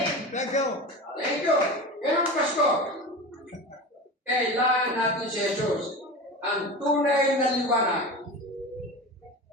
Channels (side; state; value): both; normal; correlation 0.29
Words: Thank you. Thank you. Ngayong Pasko, kailangan natin si Jesus ang tunay na liwanag